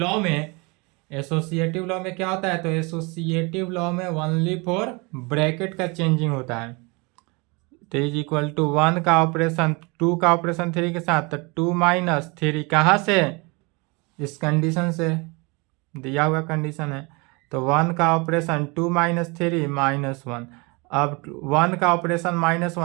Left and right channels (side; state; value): left; quieter; 28.2 dB